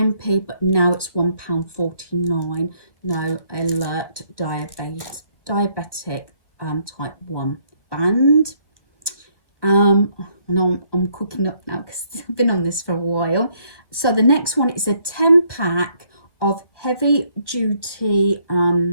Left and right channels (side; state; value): left; late; 1.4 ms